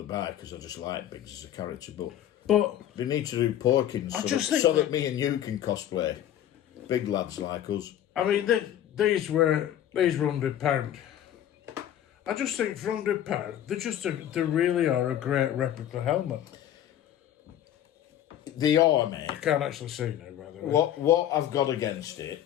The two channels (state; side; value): quieter; right; 11.2 dB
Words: buy because I just like Biggs as a character, But they need to do Porkins so that me and you can cosplay big lads like us. I mean, these were £100. I just think for £100, they really are a great replica helmet. They are, mate. I can't actually see now, by the way. What I've got against it